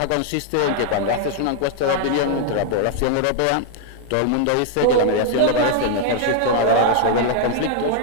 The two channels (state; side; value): different; both; correlation 0.00